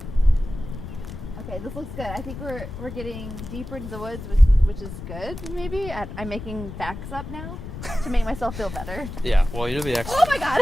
Okay, this looks good. I think we're getting deeper into the woods, which is good. Maybe I'm making facts up now to make myself feel better. Yeah, well, you're the expert. Oh my god!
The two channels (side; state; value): left; noise; rumble, 10 dB below the sound